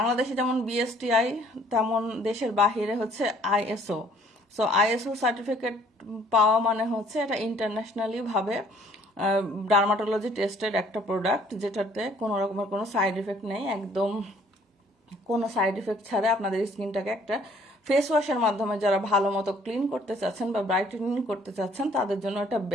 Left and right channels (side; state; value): both; normal; correlation 0.59